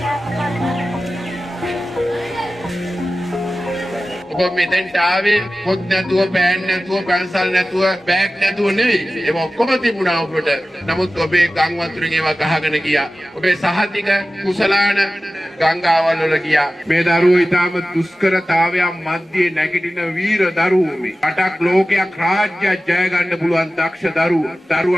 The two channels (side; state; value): both; normal; correlation 0.95